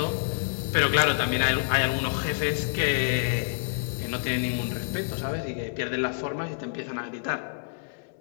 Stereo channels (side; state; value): right; silent; 60 dB below the other